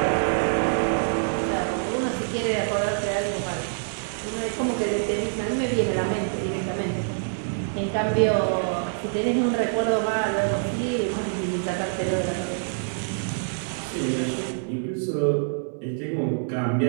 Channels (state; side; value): silent; left; 61 dB below the other